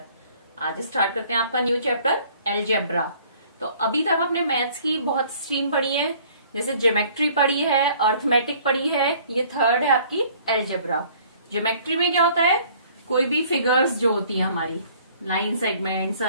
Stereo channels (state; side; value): inverted; both; correlation -0.56